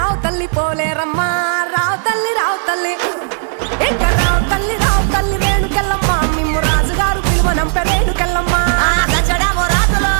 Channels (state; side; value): silent; left; digital silence